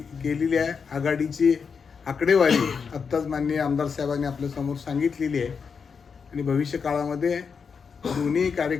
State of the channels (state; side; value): quieter; right; 5.9 dB